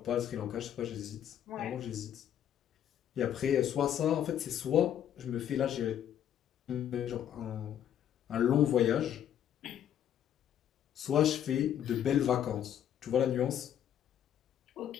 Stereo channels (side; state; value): right; quieter; 10.1 dB